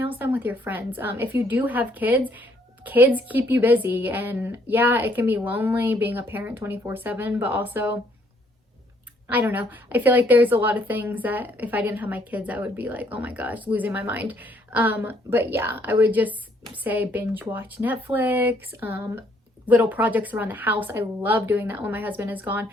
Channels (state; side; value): normal; both; correlation 0.67